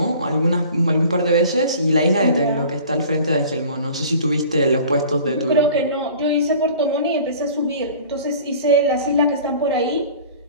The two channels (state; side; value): inverted; both; correlation -0.45